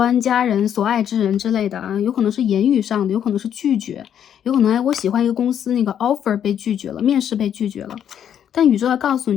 家人、所爱之人之类的有可能是言语上的，有可能是拒绝，有可能我喜欢一个公司那个 offer 被拒绝了，面试被拒绝了。但宇宙要告诉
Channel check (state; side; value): quieter; right; 9.3 dB